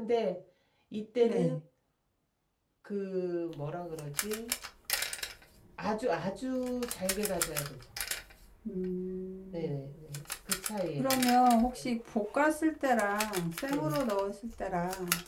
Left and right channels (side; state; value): both; identical; correlation 1.00